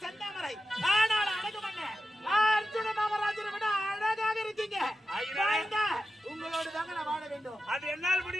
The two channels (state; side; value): normal; both; correlation 0.91